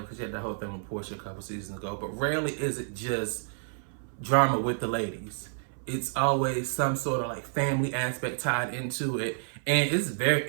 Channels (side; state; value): left; silent; 58 dB below the other